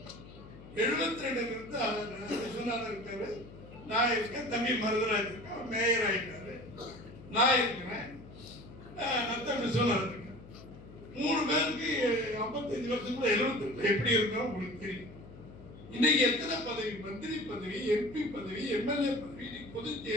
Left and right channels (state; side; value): noise; left; hum, 17 dB below the sound